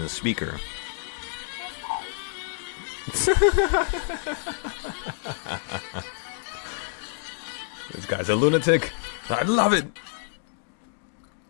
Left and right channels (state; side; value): silent; right; digital silence